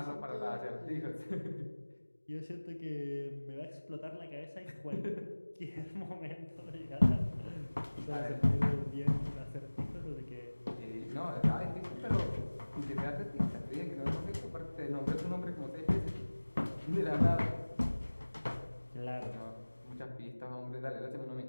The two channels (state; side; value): inverted; both; correlation -1.00